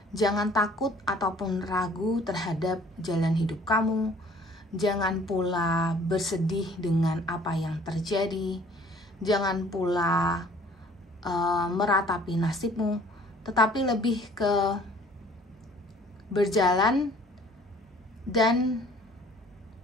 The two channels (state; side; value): normal; both; correlation 0.54